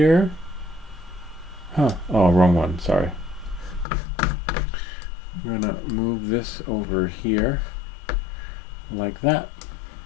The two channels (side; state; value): right; drops out; at 3.9 s